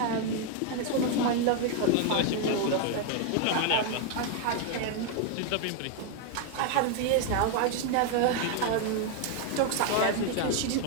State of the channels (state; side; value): different; both; correlation 0.01